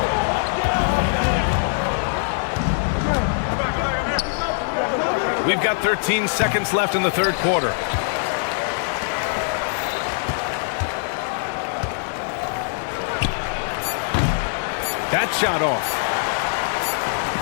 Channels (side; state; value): right; silent; 64 dB below the other